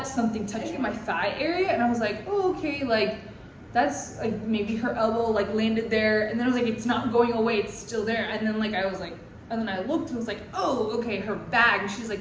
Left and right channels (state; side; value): identical; both; correlation 1.00